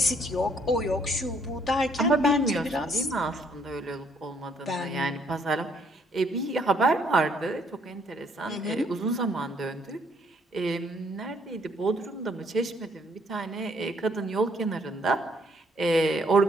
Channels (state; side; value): normal; both; correlation 0.66